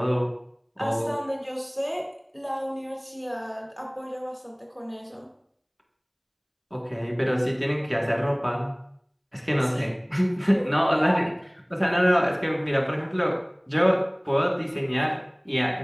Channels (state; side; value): identical; both; correlation 1.00